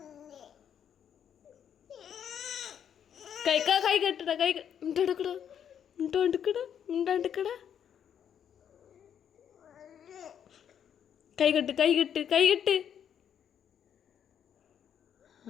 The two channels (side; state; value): right; quieter; 8.8 dB